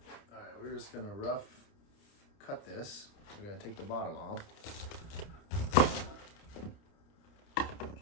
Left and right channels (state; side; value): late; right; 30 ms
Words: All right, we're just gonna rough cut this. We're gonna take the bottom off.